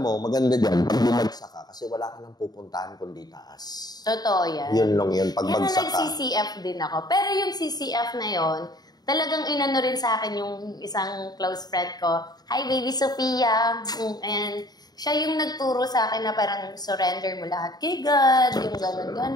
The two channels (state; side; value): late; right; 0.19 ms